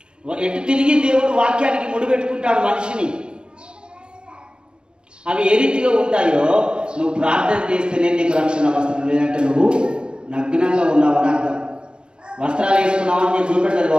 ఎటు తిరిగి దేవుడు వాక్యానికి ముడిపెట్టుకుంటాడు మనిషిని. అవి ఏ రీతిగా ఉంటాయో నువ్వు ప్రార్థన చేస్తేనే నీకు రక్షణ వస్త్రం, లేదంటే నువ్వు నగ్నంగా ఉన్నావని అర్థం. వస్త్రాలు వేసుకున్నావని నేను చూపెడతారు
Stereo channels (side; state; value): left; late; 0.051 ms